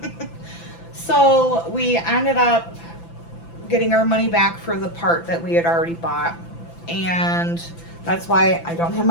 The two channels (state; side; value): late; right; 5.9 ms